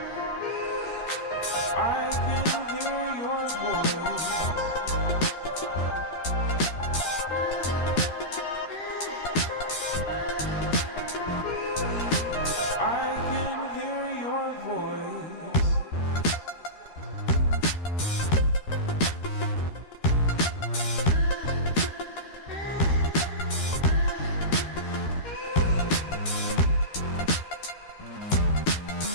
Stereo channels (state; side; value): late; right; 13 ms